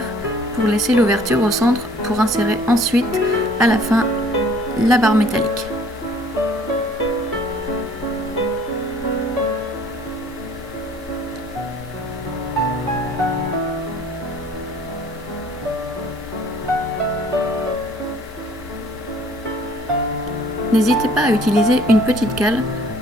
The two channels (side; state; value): both; normal; correlation 0.55